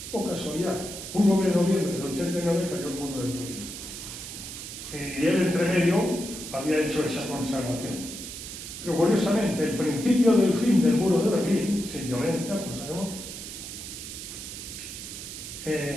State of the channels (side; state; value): right; noise; hiss, 10 dB below the sound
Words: Oh casualidad, un 9 de noviembre del 89 cayó el muro de Berlín. Y él, entre medio, había hecho esa consagración. Pero curiosamente, el principio del fin del muro de Berlín, sin violencia, como sabemos,